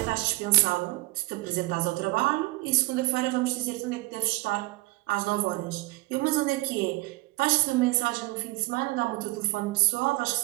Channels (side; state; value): left; quieter; 22.9 dB